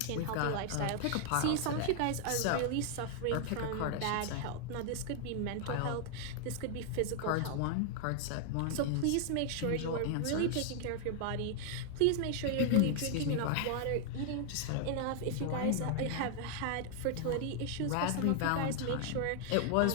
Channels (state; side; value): different; both; correlation 0.00